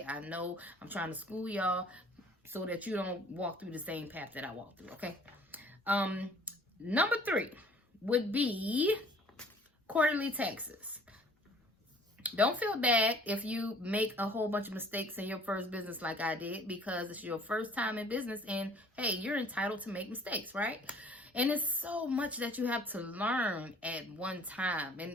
I know I'm trying to school y'all so that you don't walk through the same path that I walked through, okay? Number 3 would be quarterly taxes. Don't feel bad if you make a whole bunch of mistakes in your first business like I did, because it's your first time in business, and hey, you're entitled to make mistakes, right? And it's so much that you have to learn at one time,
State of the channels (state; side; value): normal; both; correlation 0.54